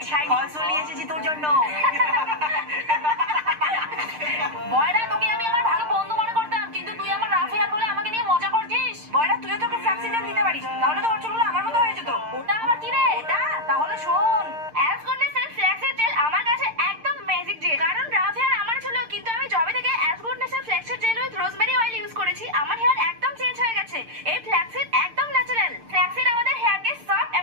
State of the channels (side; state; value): left; late; 6.6 ms